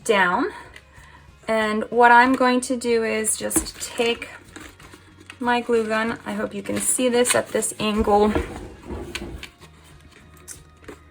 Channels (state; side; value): identical; both; correlation 1.00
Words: down, and what I'm going to do is just take my glue gun. I hope you can see this at this angle,